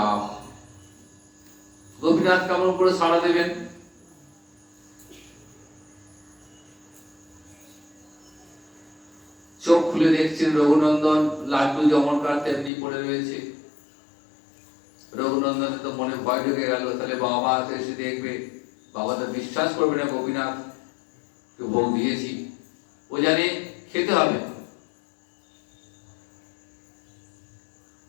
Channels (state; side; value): drops out; right; at 12.7 s